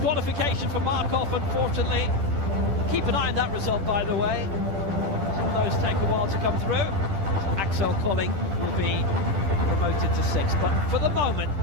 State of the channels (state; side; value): late; left; 10 ms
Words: for Markov, unfortunately. Keep an eye on that result, by the way. Some of those take a while to come through. Axel Colling will be promoted to 6th, but for the moment,